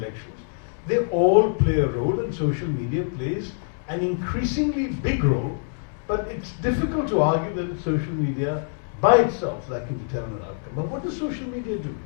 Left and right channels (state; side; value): silent; right; digital silence